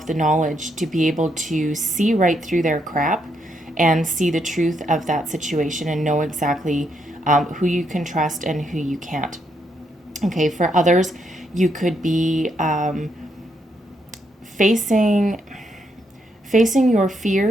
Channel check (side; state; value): both; normal; correlation 0.77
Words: the knowledge to be able to see right through their crap and see the truth of that situation and know exactly who you can trust and who you can't. Okay, for others, you could be facing your